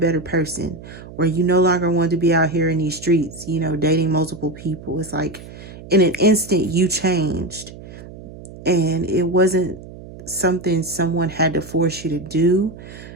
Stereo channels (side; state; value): right; noise; hum, 16 dB below the sound